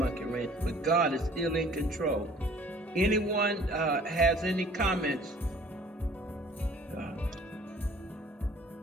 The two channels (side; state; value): both; normal; correlation 0.53